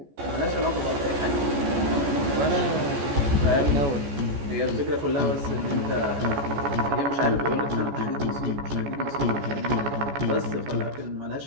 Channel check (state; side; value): late; left; 14 ms